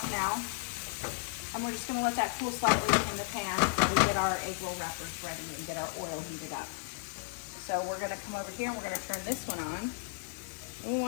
now, and we're just going to let that cool slightly in the pan while we get our egg roll wrappers ready and get our oil heated up. So we're going to come over here and we're going to turn this one on. We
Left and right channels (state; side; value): silent; right; digital silence